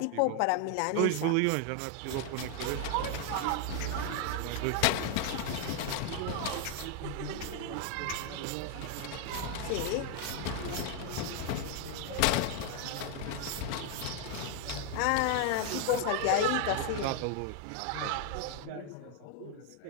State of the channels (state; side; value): different; both; correlation 0.01